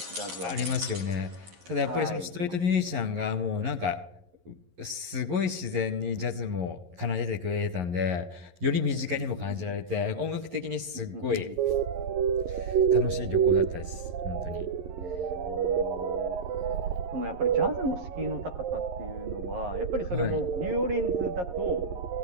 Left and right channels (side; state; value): left; late; 11 ms